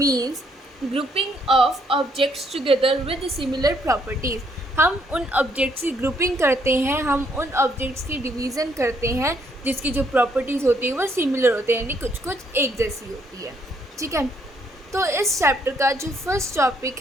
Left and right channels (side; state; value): both; normal; correlation 0.70